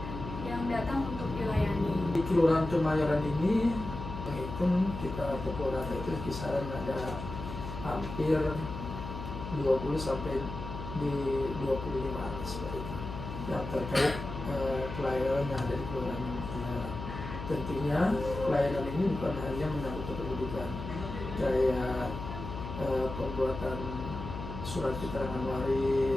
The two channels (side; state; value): left; noise; hum, 8 dB below the sound